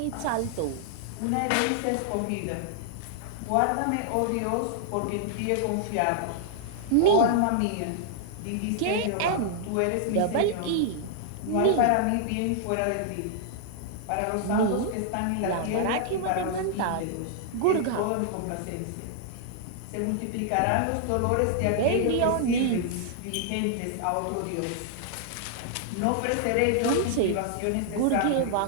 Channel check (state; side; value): different; both; correlation -0.01